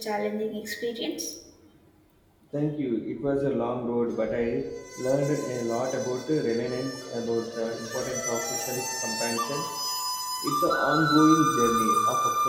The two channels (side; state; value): both; identical; correlation 1.00